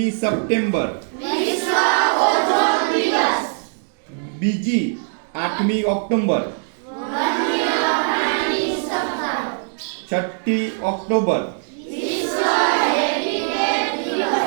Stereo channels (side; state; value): left; silent; 58 dB below the other